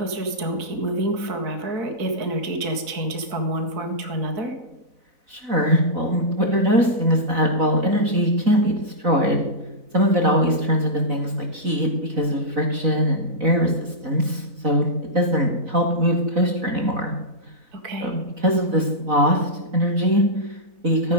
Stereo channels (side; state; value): left; late; 4.0 ms